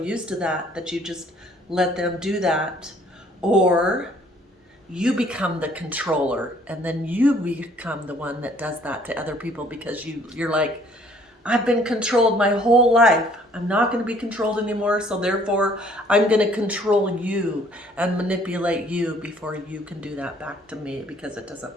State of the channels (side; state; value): both; normal; correlation 0.59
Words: to that you just let them do that, or you become the controller and then you become the one that does that to other people because you're like, I've been controlled my whole life. I'm not going to be controlled anymore, so therefore I'm going to control you and manipulate you before you can do that back to me because it